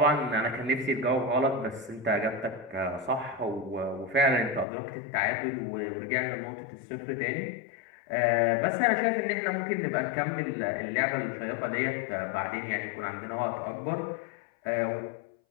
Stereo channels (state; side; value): drops out; right; at 4.7 s